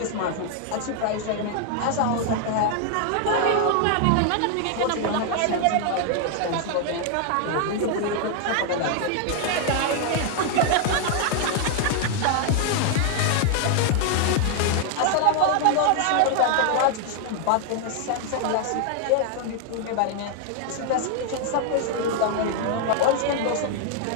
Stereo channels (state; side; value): different; both; correlation 0.00